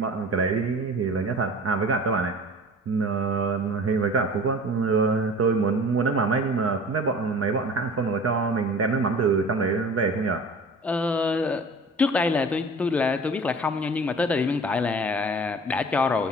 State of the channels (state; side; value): normal; both; correlation 0.42